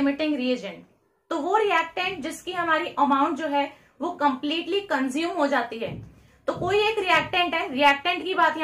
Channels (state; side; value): identical; both; correlation 1.00